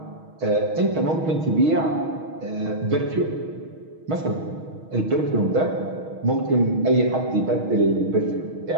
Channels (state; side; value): late; left; 6.3 ms